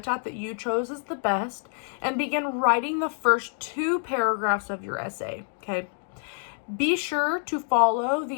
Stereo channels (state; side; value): silent; right; 56 dB below the other